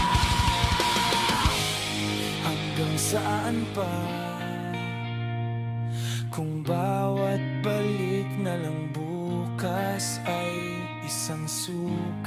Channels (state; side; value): identical; both; correlation 1.00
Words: Hanggang saan pa? Kung bawat balik na lang bukas ay isang